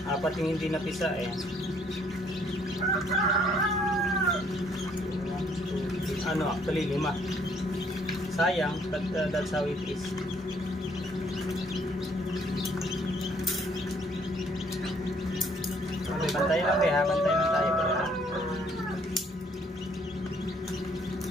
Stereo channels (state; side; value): normal; both; correlation 0.64